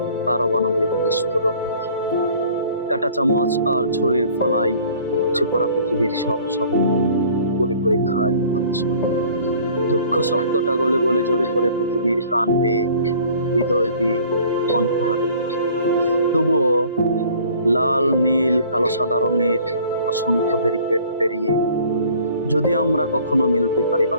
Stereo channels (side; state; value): both; inverted; correlation -0.52